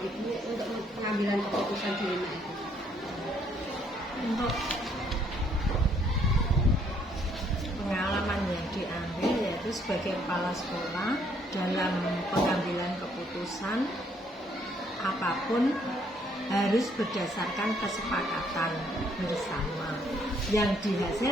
untuk pengambilan keputusan dilema itu? Untuk pengalaman yang diambil yaitu sebagai kepala sekolah dalam pengambilan keputusan apapun harus berdasarkan kesepakatan bersama yang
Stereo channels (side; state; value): both; normal; correlation 0.67